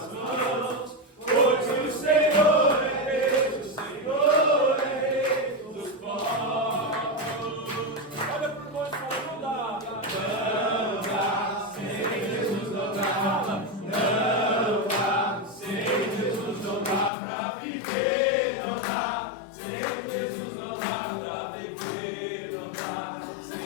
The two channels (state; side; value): drops out; right; at 17.1 s